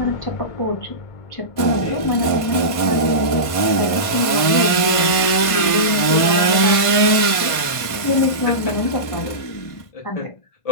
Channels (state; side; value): late; right; 1.5 ms